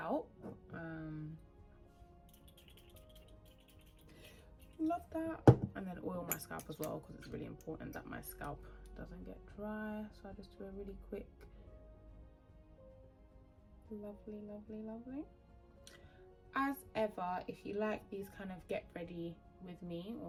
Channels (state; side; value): identical; both; correlation 1.00